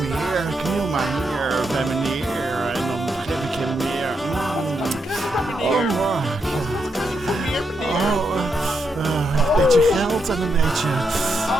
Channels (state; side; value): normal; both; correlation 0.81